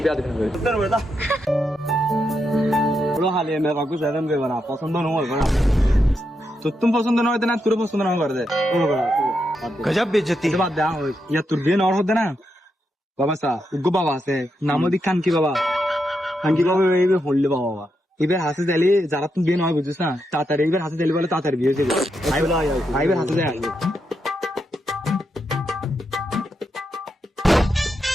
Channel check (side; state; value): both; normal; correlation 0.83